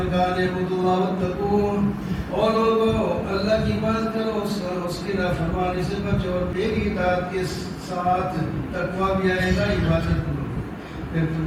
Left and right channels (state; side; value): identical; both; correlation 1.00